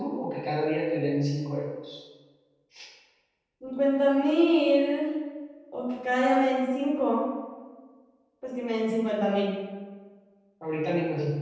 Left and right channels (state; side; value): identical; both; correlation 1.00